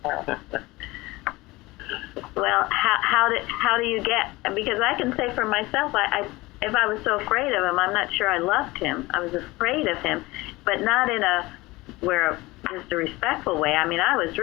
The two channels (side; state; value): right; quieter; 21.0 dB